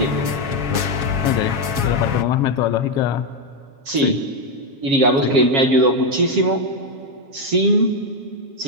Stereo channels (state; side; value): late; left; 7.3 ms